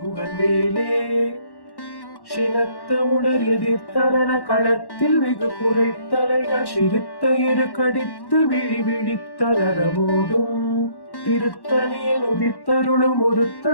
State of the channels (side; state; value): right; late; 1.1 ms